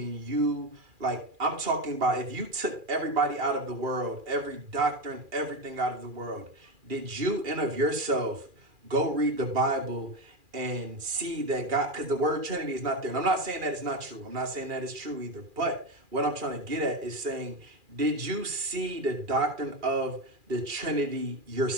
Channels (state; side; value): late; left; 2.4 ms